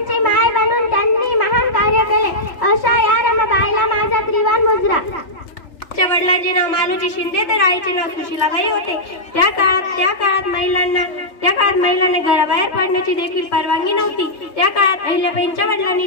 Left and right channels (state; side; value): late; right; 3.4 ms